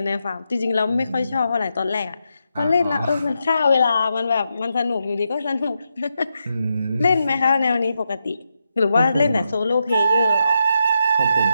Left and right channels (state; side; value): inverted; both; correlation -0.84